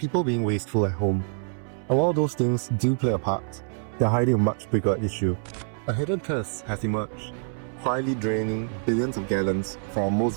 being wasteful at home. And while those things do play a part, they're hiding a much bigger issue. A hidden curse has emerged, quietly draining billions of gallons from our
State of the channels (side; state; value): left; silent; 61 dB below the other